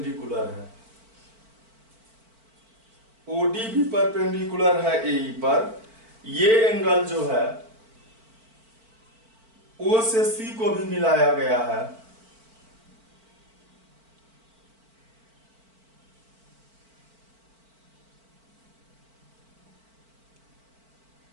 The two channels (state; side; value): late; left; 4.5 ms